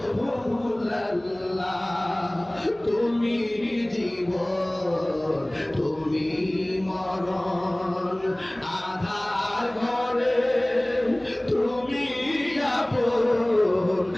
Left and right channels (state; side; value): noise; right; hum, 28 dB below the sound